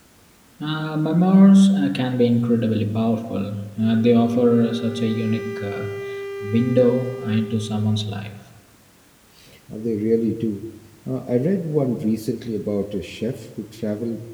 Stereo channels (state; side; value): identical; both; correlation 1.00